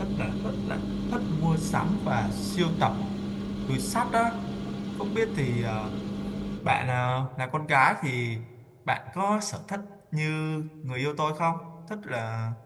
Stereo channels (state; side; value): identical; both; correlation 1.00